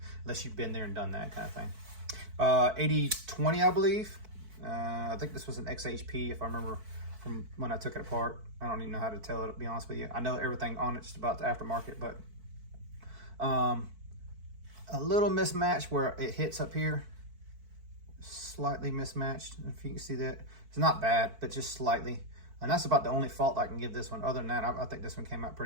unless you've been there and done that kind of thing. 8020, I believe. I think this was an XHP, if I remember from when I took it apart. I don't even know how to tell it, to be honest with you. I know everything on it's just about the aftermarket, but a little mismatch where it hits up here, slightly mismatched, if you can see that. It's not bad, but just slightly, and that's about the only fault I can give this one. Other than that, I think this one came out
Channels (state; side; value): late; left; 4.5 ms